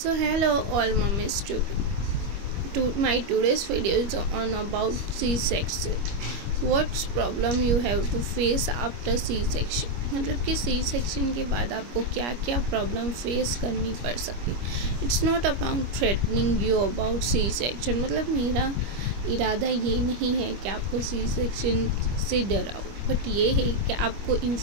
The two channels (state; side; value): late; left; 25 ms